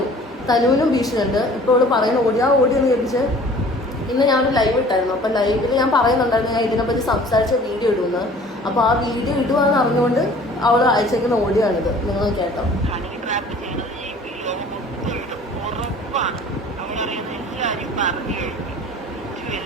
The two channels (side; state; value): both; normal; correlation 0.49